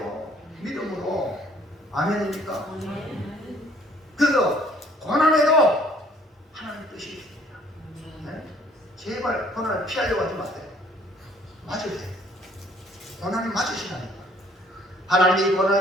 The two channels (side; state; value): both; normal; correlation 0.59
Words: 믿음으로. 아멘입니까? 그래서 고난에도 하나님 뜻이 있습니다. 네? 제발 고난을 피하려고 하지 마세요. 맞으세요. 고난이 맞으시라니까. 하나님이 이